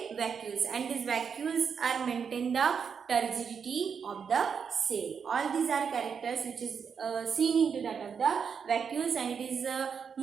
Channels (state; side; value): quieter; left; 6.6 dB